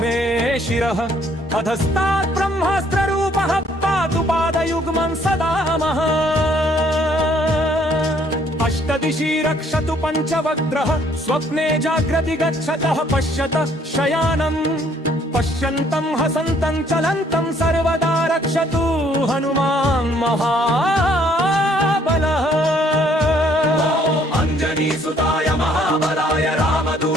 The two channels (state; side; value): normal; both; correlation 0.64